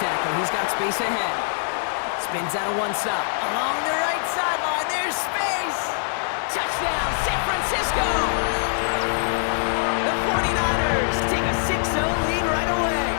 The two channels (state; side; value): silent; right; digital silence